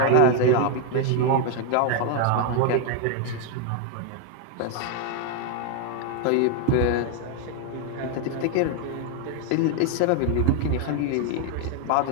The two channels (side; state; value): both; different; correlation 0.01